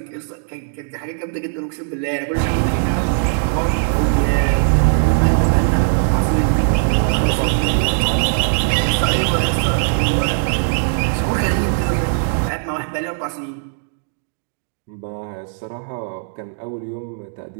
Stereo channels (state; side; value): silent; left; digital silence